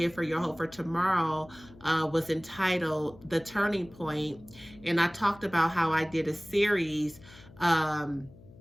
for Your Hope for Tomorrow was entitled The Turning Point. And I talked about how I did a series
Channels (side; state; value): left; noise; hum, 22 dB below the sound